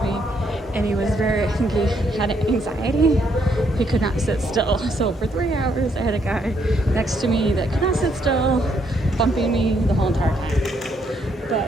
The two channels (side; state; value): both; normal; correlation 0.73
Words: me. And he was I think he had anxiety. He could not sit still. So for 3 hours, I had a guy next to me that could not sit still, bumping me the whole entire time.